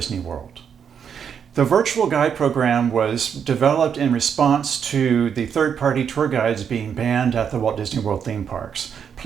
World. The virtual guide program was developed in response to the third-party tour guides being banned at the Walt Disney World theme parks.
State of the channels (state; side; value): quieter; left; 7.5 dB